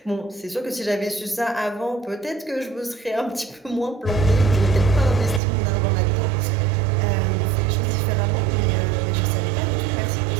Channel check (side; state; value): left; drops out; at 5.4 s